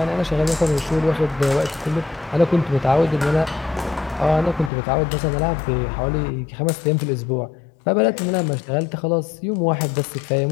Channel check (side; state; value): right; drops out; at 4.7 s